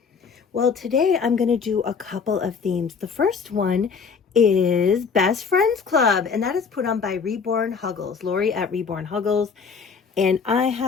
Well, today I'm going to do a couple of themes. The first one is Best Friends Club, and that is put on by Reborn Huggles, Lori at Reborn Huggles. And I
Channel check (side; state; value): right; quieter; 5.7 dB